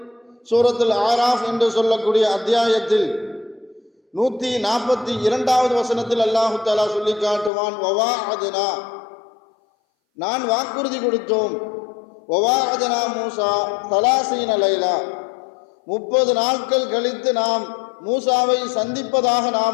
சூரத்துல் ஆராஃப் என்று சொல்லக்கூடிய அத்தியாயத்தில் 142வது வசனத்தில் அல்லாஹு தஆலா சொல்லி காட்டுவான், வவாஅத்னா, நான் வாக்குறுதி கொடுத்தோம். வவாஅத்னா மூசா 30 லைலா, 30 நாட்கள் கழித்து நாம் மூசாவை சந்திப்பதாக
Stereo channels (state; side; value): drops out; right; at 7.5 s